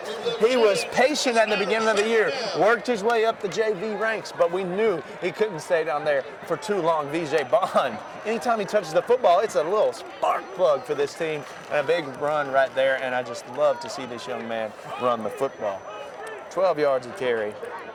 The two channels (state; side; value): identical; both; correlation 1.00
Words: He was patient at the beginning of the year, worked his way up the JV ranks, but we knew he couldn't stay down there for too long. VJ Bond, anytime he touches the football, it's a little spark plug for this team, and a big run right there, and I just love to see this young man run the football. 12 yards a carry.